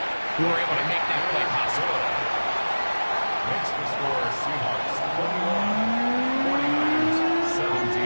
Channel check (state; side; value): inverted; both; correlation -1.00